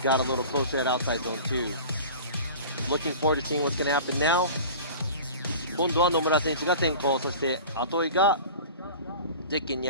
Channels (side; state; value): both; inverted; correlation -0.38